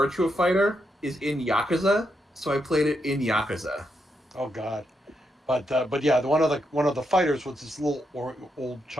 Fighter is in Yakuza, so I played it in Yakuza. Oh God, but yeah, one of the fighters was this little old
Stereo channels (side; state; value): both; normal; correlation 0.82